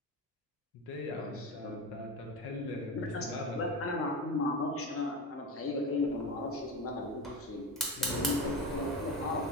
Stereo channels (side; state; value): both; normal; correlation 0.22